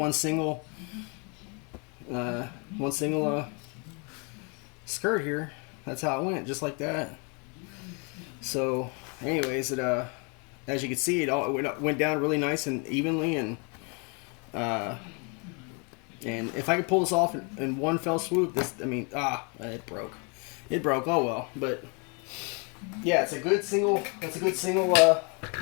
single skirt here. That's how it went, just like that. So, anyways, it as you can see, it went down really nice and evenly, and if I could pull this off in one fell swoop, it broke. It broke. Oh well, but yeah, it's a good single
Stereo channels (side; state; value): right; quieter; 34.5 dB